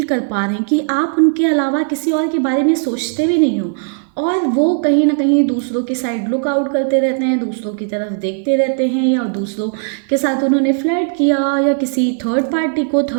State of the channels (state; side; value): silent; left; 56 dB below the other